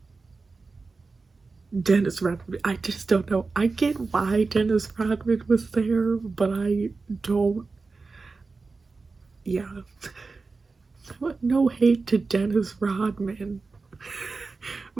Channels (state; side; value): quieter; left; 4.1 dB